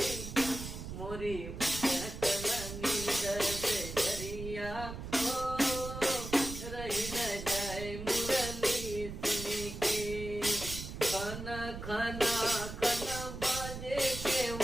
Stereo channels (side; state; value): right; noise; rumble, 8 dB below the sound